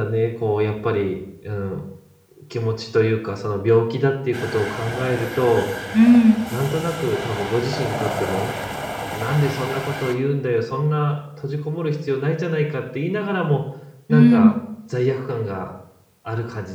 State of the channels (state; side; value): identical; both; correlation 1.00